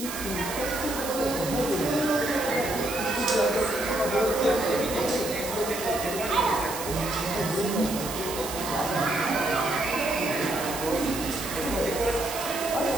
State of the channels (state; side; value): noise; right; hiss, 8 dB below the sound